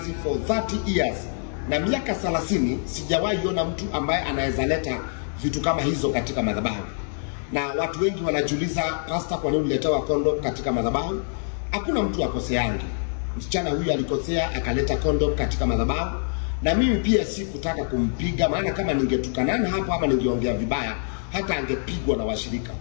for 30 years. Na miaka 30 sijawahi ona mtu ambaye anaweza leta vitu kama hizo katika madhabahu. Na watu wengi wanajiuliza, pastor, kwa nini uliletewa condom katika madhabahu? Hakuna mtu akoseangi. Msichana huyu alikosea akaleta condom katika madhabahu, na mimi pia sikutaka kumpiga, maana kama ningetukanana hapo ama ningeongea vibaya hata angepigwa na washirika.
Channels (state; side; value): silent; right; digital silence